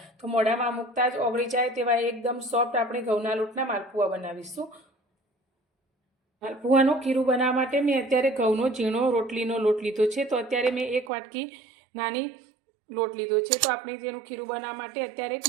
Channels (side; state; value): left; drops out; at 11.1 s